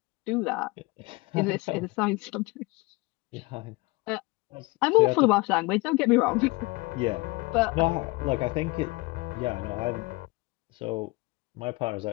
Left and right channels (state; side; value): quieter; right; 24.1 dB